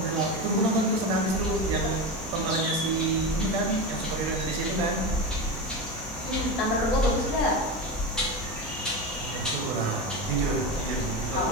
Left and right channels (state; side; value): normal; both; correlation 0.21